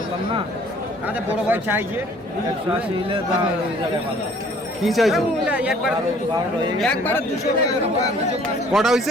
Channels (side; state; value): both; normal; correlation 0.56